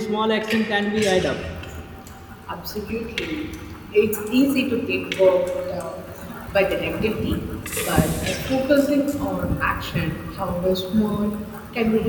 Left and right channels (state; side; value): identical; both; correlation 1.00